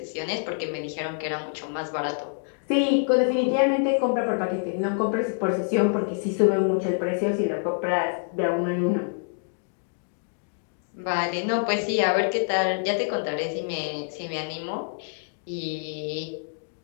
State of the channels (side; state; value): right; silent; digital silence